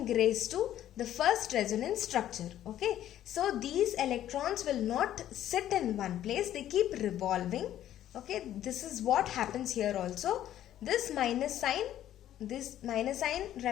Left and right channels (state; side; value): quieter; right; 12.0 dB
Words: rise to the first resonance structure. Okay, so these electrons will not sit in one place, they keep revolving. Okay, this is what happens here also. This minus sign